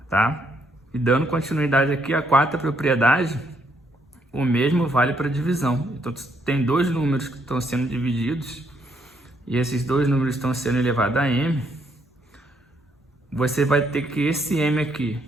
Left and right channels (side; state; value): both; normal; correlation 0.72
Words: Tá? E dando continuidade aqui à quarta propriedade, o mesmo vale para divisão. Então tem 2 números que estão sendo divididos e esses 2 números estão sendo elevados a m. Você vai ter que esse m aqui,